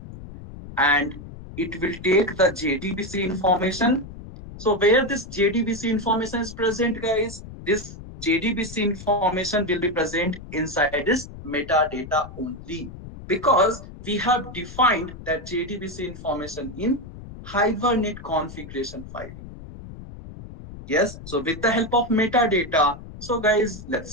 and it will take the JDBC information. So where this JDBC information is present, guys, this JDBC information will be present inside this metadata only, because we have defined that JDBC information in Hibernate configuration file. Yes, so with the help of metadata, so guys,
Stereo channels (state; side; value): noise; left; rumble, 14 dB below the sound